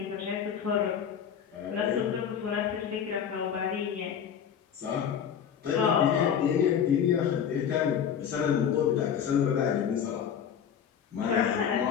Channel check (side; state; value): right; quieter; 8.2 dB